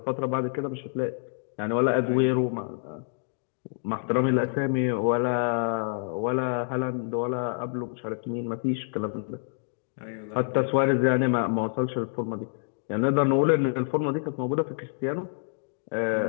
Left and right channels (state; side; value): silent; right; digital silence